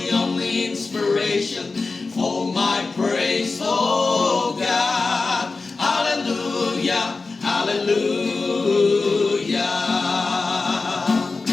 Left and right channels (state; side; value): quieter; right; 3.9 dB